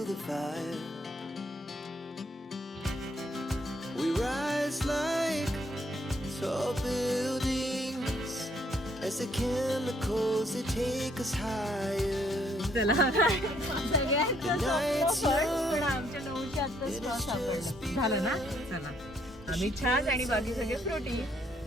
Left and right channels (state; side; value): normal; both; correlation 0.69